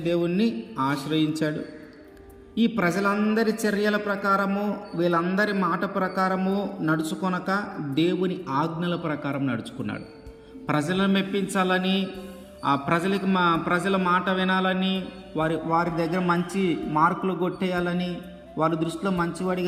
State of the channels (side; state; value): both; identical; correlation 1.00